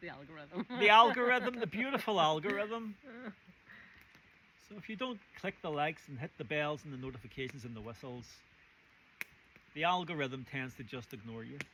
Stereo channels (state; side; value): identical; both; correlation 1.00